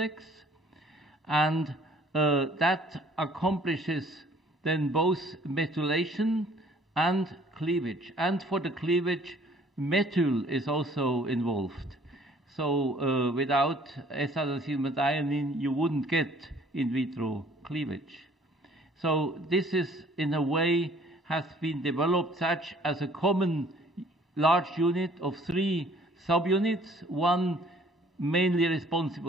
and that accomplishes then both methylation and cleavage. And for the cleavage, methyl is also involved. So without S-adenosylmethionine, you wouldn't get in vitro cleavage. So this is, in a way, has been developed such as a common large unit of 3 subunits, one mainly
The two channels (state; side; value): normal; both; correlation 0.56